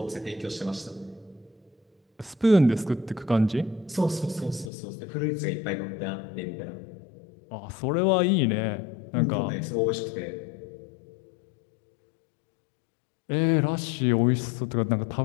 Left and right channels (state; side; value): drops out; right; at 4.7 s